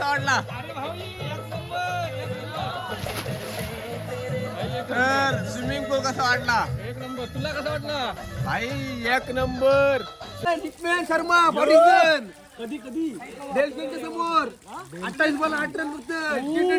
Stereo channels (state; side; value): identical; both; correlation 1.00